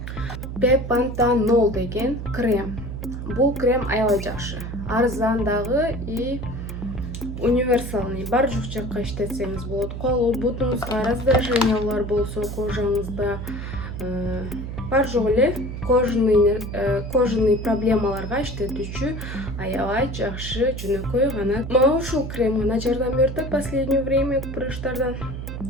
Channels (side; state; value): right; noise; hum, 7 dB below the sound